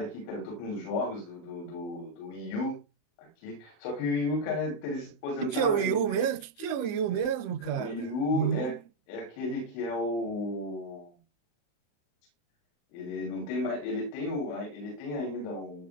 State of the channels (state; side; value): late; right; 34 ms